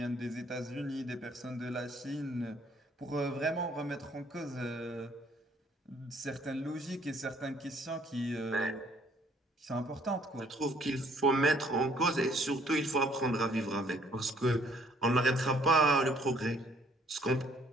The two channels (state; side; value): normal; both; correlation 0.63